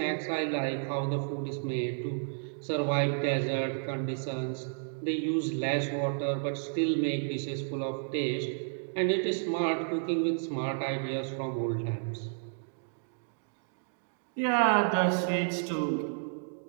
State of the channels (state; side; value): silent; left; digital silence